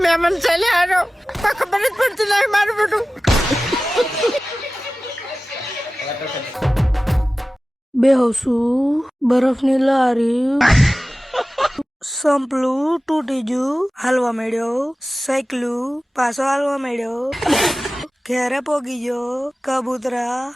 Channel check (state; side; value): normal; both; correlation 0.96